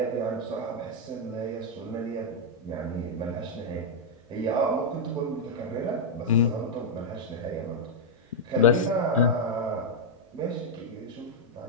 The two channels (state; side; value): normal; both; correlation -0.02